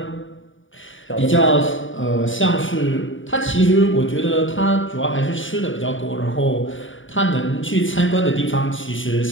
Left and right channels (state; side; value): late; right; 0.57 ms